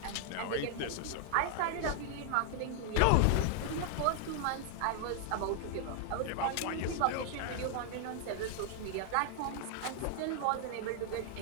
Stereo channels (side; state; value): both; different; correlation 0.00